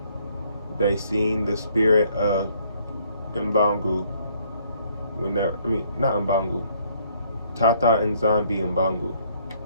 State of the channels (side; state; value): both; inverted; correlation -0.65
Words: they seen the spirit of mPungu. Not mPungu. Tata nZambi mPungu.